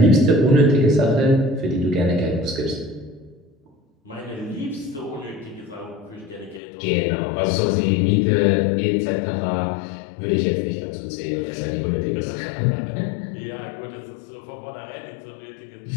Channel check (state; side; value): drops out; right; at 6.6 s